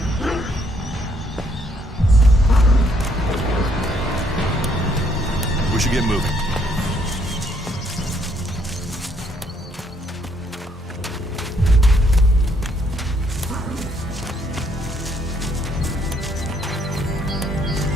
We should get moving.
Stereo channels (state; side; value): normal; both; correlation 0.69